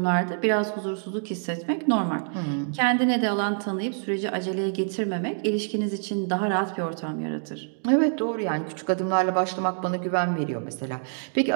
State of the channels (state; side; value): silent; left; digital silence